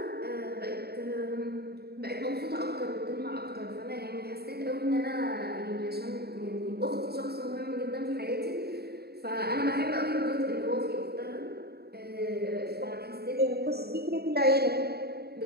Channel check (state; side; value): late; left; 0.46 ms